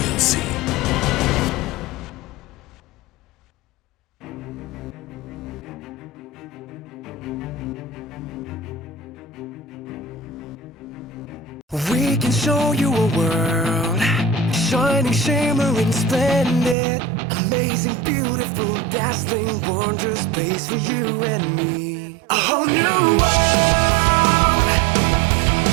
We can show you a world, shining, shimmering, splendid, amazing, beautiful, dazzling, wondrous space for you and me. A whole new world,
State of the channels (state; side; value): drops out; left; at 16.8 s